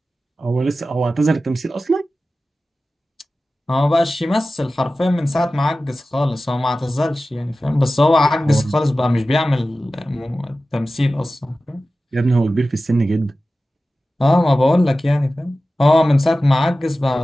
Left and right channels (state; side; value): normal; both; correlation 0.95